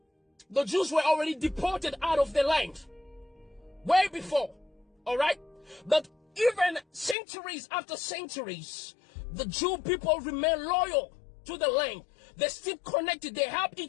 the Jews were already deported out of the land. Way before, all right? But even centuries after centuries, the Jew people remain loyal to the land. They're still connected. They help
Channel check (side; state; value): right; drops out; at 7.2 s